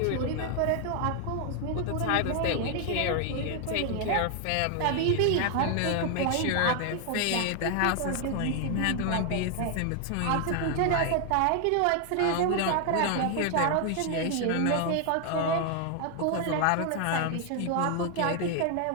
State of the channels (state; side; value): different; both; correlation 0.00